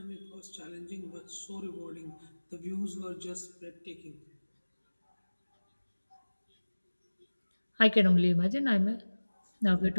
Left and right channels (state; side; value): inverted; both; correlation -1.00